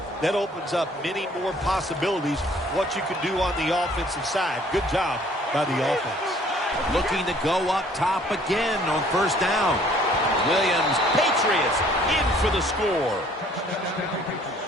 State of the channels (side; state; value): both; normal; correlation 0.57